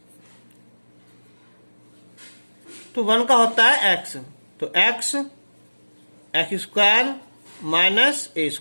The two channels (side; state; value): both; inverted; correlation -1.00